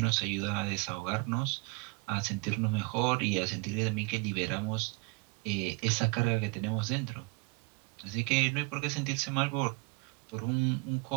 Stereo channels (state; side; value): quieter; left; 27.3 dB